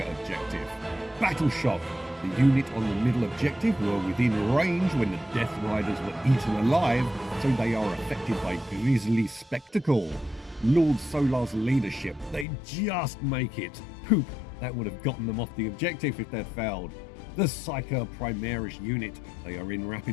objective. Battle Shock. The unit on the middle objective were within range when the Death Riders were eaten alive, so they are affected by Grisly Spectacle. Lord Solar's leadership, they just make it. Poop, that would have gotten them off the objective if they'd failed. The Psyker Primaris unit, they are in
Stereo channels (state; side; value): drops out; right; at 12.5 s